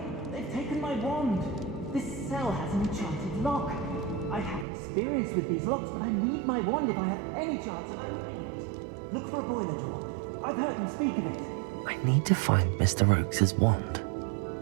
They've taken my wand. This cell has an enchanted lock. I have experience with these locks, but I need my wand if I have any chance of opening it. Look for a boiler door. I've heard them speak of it. I need to find Mr. Oakes' wand.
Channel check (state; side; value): drops out; left; at 4.7 s